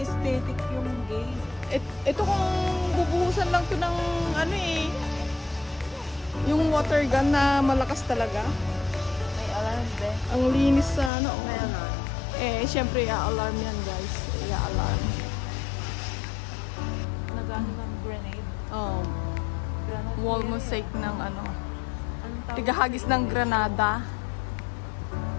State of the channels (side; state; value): right; drops out; at 11.1 s